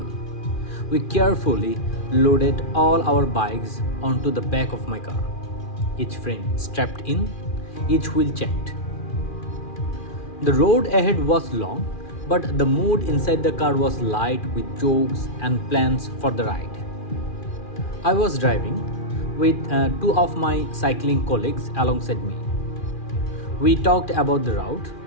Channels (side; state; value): right; late; 2.4 ms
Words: We carefully loaded all our bikes onto the back of my car, each frame strapped in, each wheel checked. The road ahead was long, but the mood inside the car was light with jokes and plans for the ride. I was driving with two of my cycling colleagues alongside me. We talked about the route,